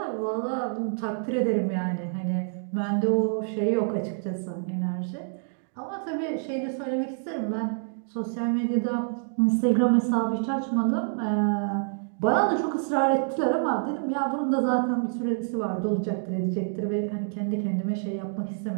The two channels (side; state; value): left; silent; digital silence